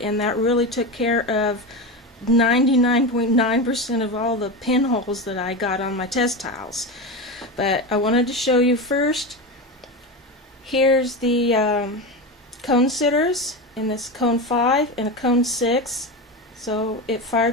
that really took care of 99.9% of all the pinholes that I got on my test tiles. But I wanted to show you first. Here's the cone sitters in this cone 5 and a cone 6. So it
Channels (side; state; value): both; normal; correlation 0.20